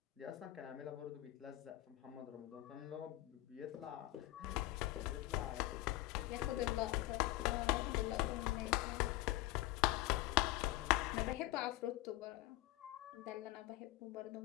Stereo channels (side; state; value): right; quieter; 17.1 dB